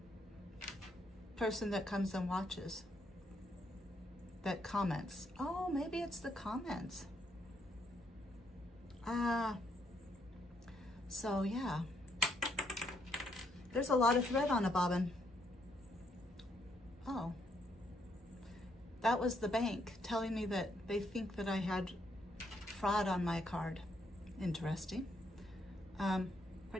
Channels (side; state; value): both; normal; correlation 0.74